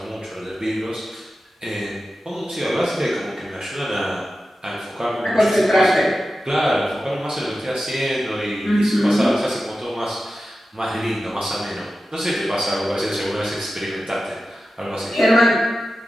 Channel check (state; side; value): normal; both; correlation 0.93